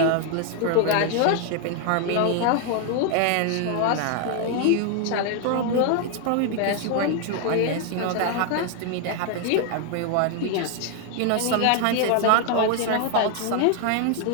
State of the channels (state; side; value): different; both; correlation 0.00